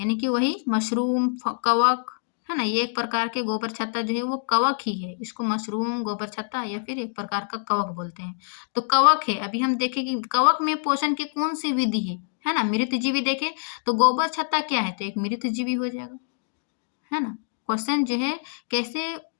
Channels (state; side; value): silent; right; digital silence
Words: कि वही मशरूम कवक है ना। ये एक प्रकार के गोबर छत्ता जो है वो कवक ही है, इसको मशरूम गोबर छत्ता या फिर एक प्रकार का कवक बोलते हैं। तो कवक है। अभी हम देखें कि कवक में पोषण की कौन सी विधि है ना। मृतजीवी देखें तो गोबर छत्ता क्या है? तो एक मृतजीवी हो जाएगा है ना। क्वेश्चन जो है कैसे